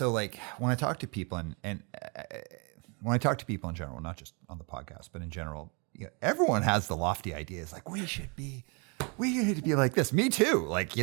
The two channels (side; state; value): left; quieter; 33.3 dB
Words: I talk to people and when I talk to people in general, not just on the podcast, but in general, everyone has the lofty ideas like we should be we need to be like this. Me too. Like,